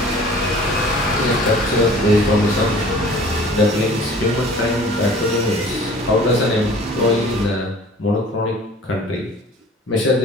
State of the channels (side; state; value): both; normal; correlation 0.47